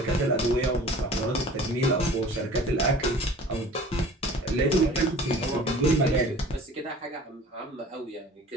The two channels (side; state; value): both; normal; correlation 0.45